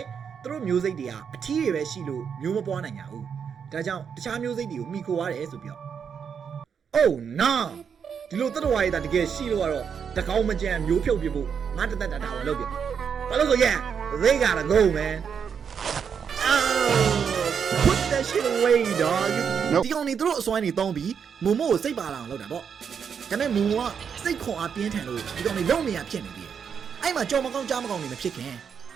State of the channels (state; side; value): quieter; left; 7.0 dB